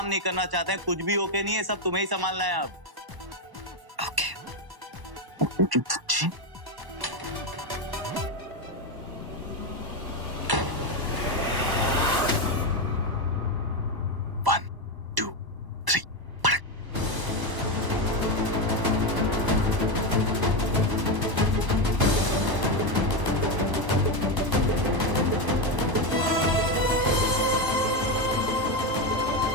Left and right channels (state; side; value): late; left; 1.0 ms